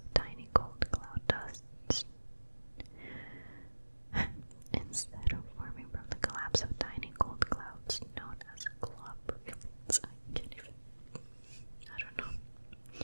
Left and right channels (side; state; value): both; inverted; correlation -1.00